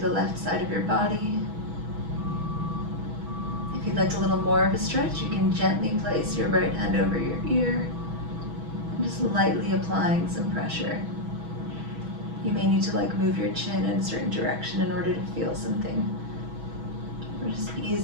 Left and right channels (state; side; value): late; left; 6.2 ms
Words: the left side of your body. If you'd like a little more of a stretch, you can gently place your right hand over your ear and just lightly applying some pressure. You may need to move your chin in a certain direction in order to feel something. We're just